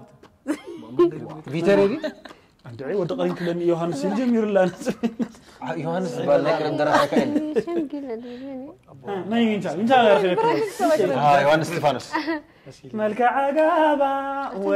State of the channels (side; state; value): both; identical; correlation 1.00